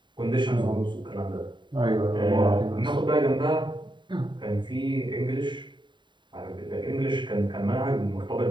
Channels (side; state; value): left; late; 0.23 ms